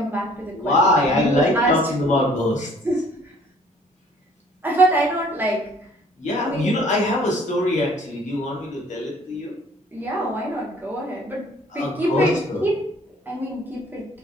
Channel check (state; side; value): normal; both; correlation 0.56